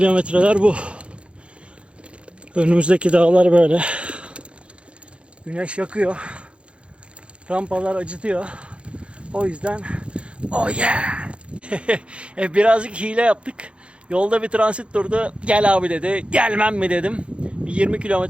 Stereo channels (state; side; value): late; left; 0.059 ms